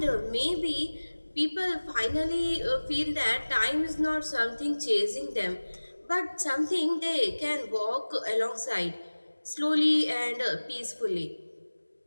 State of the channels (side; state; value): both; inverted; correlation -1.00